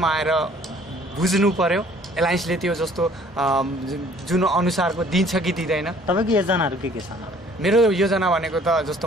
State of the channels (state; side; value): normal; both; correlation 0.56